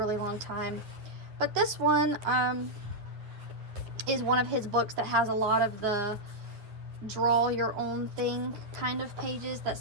long time. But this one is one of his books that has a lot of the draw your own thing kind of pages that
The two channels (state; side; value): late; left; 9.6 ms